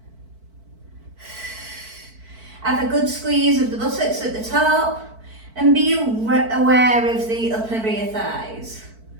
Have a good squeeze of the buttocks at the top and be aware of the upper rear thighs.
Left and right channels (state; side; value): late; left; 4.5 ms